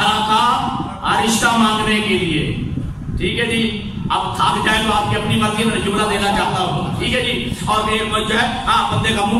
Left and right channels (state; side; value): identical; both; correlation 1.00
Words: کا رشتہ مانگنے کے لیے، ٹھیک ہے جی۔ اب تھک جائے تو آپ کی اپنی مرضی میں جملہ دینا چاہتا ہوں، ٹھیک ہے جی، اور جو ہے بندے کا منہ